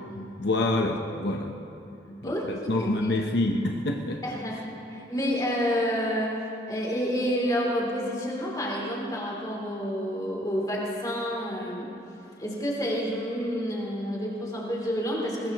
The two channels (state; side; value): normal; both; correlation 0.61